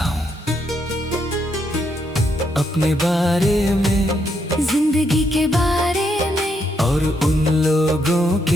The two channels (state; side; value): normal; both; correlation 0.77